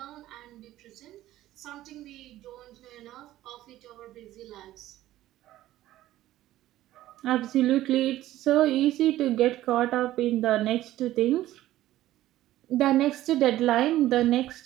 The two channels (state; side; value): quieter; left; 14.6 dB